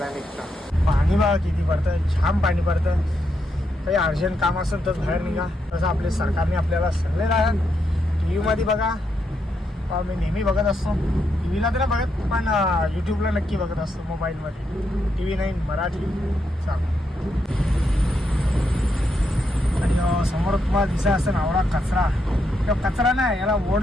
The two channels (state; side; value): normal; both; correlation 0.81